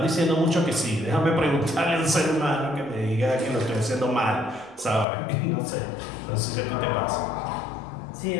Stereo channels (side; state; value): right; drops out; at 5.1 s